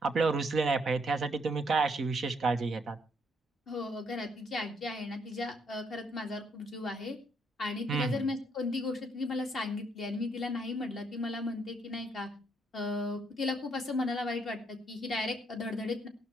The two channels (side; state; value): both; normal; correlation 0.71